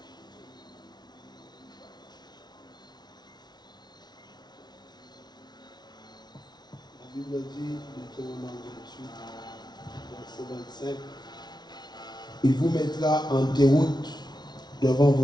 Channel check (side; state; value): right; late; 0.20 ms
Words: Bible dit, Deutéronome 28, verset 25, il vous mettra en déroute devant